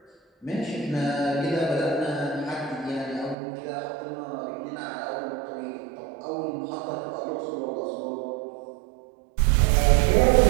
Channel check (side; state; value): left; drops out; at 3.4 s